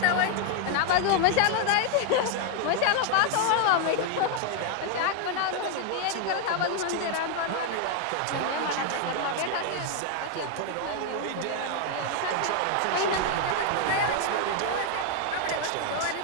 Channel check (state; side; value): different; both; correlation 0.00